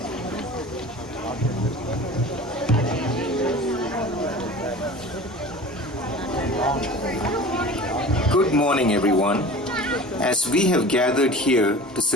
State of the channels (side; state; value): both; normal; correlation 0.39